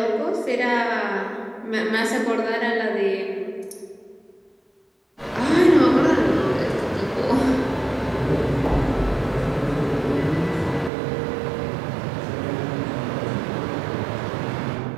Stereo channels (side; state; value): left; drops out; at 10.9 s